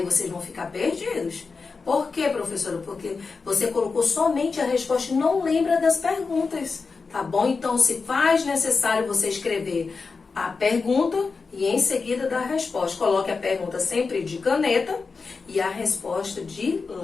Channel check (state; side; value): quieter; right; 4.6 dB